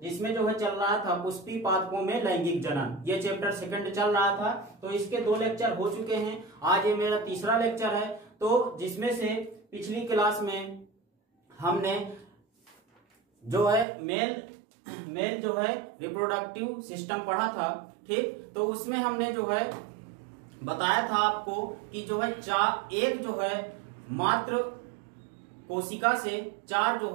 जिसमें जो है चल रहा था पुष्पी पादपों में लैंगिक जनन। ये चैप्टर 2 चल रहा था। तो इसके 2 लेक्चर हो चुके हैं। आज ये मेरा तीसरा लेक्चर है। तो जिसमें से पिछली क्लास में हमने जो है मेल जो है रिप्रोडक्टिव सिस्टम पढ़ा था। ठीक, तो उसमें हमने जो है बताया था आपको कि जो है एक जो है मात्र कोशिका से 4 जो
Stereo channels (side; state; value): left; drops out; at 13.9 s